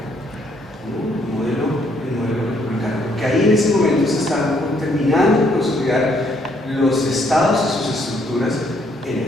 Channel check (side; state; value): both; normal; correlation 0.69